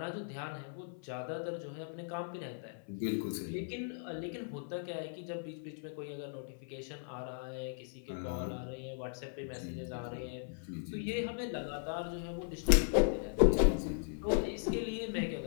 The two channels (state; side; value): silent; right; 53 dB below the other